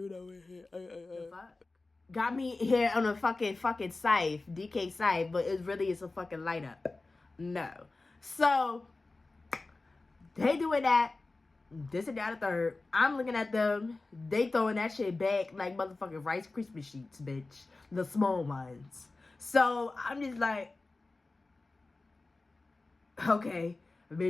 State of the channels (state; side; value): quieter; right; 3.4 dB